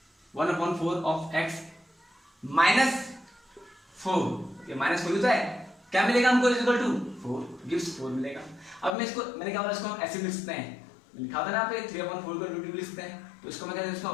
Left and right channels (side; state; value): right; drops out; at 8.9 s